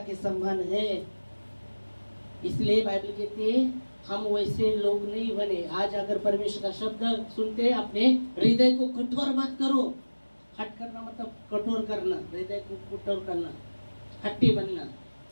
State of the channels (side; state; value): both; inverted; correlation -1.00